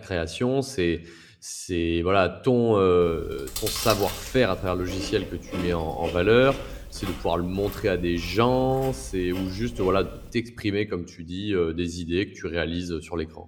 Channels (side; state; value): both; identical; correlation 1.00